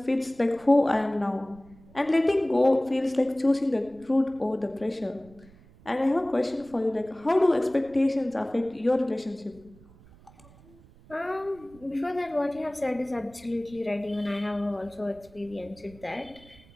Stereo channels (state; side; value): noise; right; rumble, 24 dB below the sound